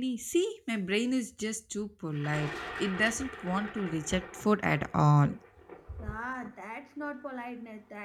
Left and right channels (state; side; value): identical; both; correlation 1.00